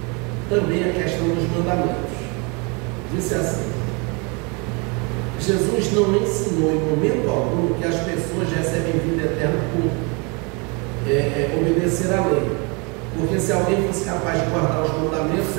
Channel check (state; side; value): quieter; left; 31.2 dB